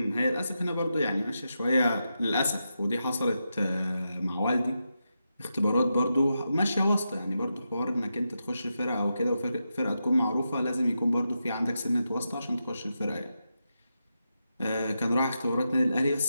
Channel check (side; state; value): both; inverted; correlation -0.87